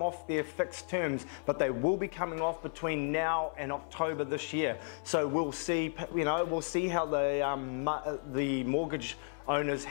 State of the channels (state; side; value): silent; right; 55 dB below the other